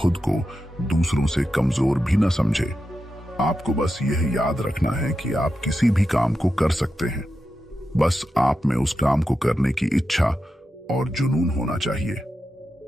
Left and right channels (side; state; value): both; normal; correlation 0.89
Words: को दूसरों से कमजोर भी न समझें। आपको बस यह याद रखना है कि आप किसी भी काम को कर सकते हैं, बस आप में उस काम को करने की इच्छा और जुनून होना चाहिए।